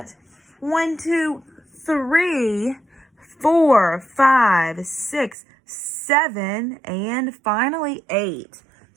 1, 2, 3, 4, 5, 6, 7, and finally 8.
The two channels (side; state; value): left; drops out; at 5.4 s